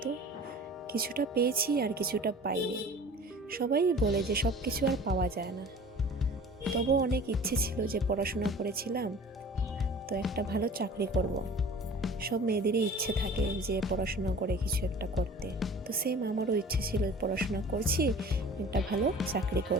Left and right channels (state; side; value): normal; both; correlation 0.43